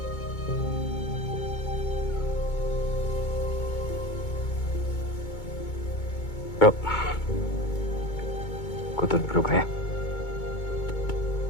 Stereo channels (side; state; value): right; late; 2.2 ms